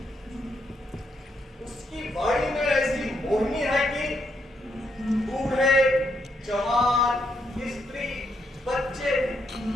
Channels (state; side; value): normal; both; correlation 0.78